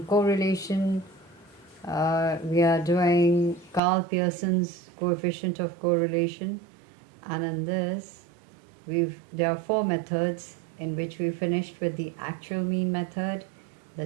we are doing Karl Pearson's coefficient of correlation. And in this, there are 4 methods in which we finished with the actual mean method, the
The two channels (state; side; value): drops out; left; at 3.8 s